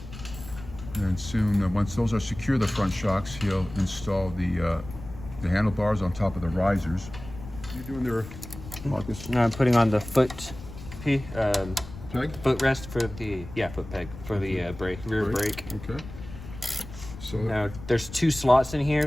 And soon, once those are secure, the front shocks, he'll install the handlebars on top of the risers. What are you doing there, Marcus? No, I'm putting on the foot Peg? footrest for the foot peg for the rear brake. Okay. So now there's two slots in here,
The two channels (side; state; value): left; noise; rumble, 14 dB below the sound